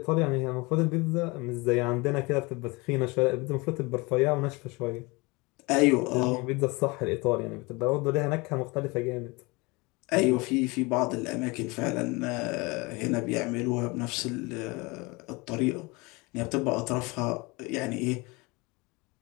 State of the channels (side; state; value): right; quieter; 25.6 dB